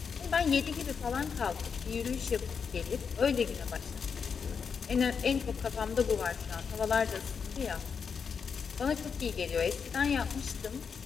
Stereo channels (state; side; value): quieter; right; 6.2 dB